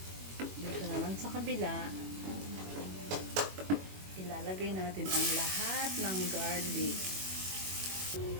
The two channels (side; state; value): left; late; 21 ms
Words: Dito naman sa kabila, ilalagay natin ang lahat ng garlic.